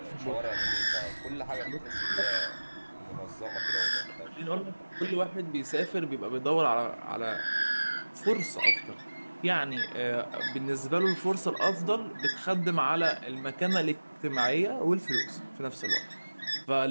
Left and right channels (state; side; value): inverted; both; correlation -1.00